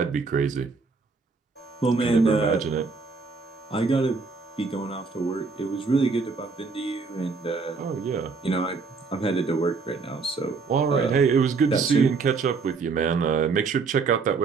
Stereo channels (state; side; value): quieter; left; 4.6 dB